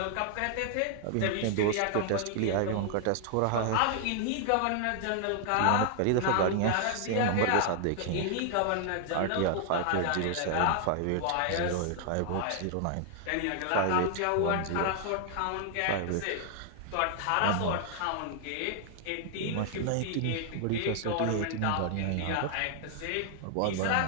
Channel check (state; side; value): different; both; correlation 0.00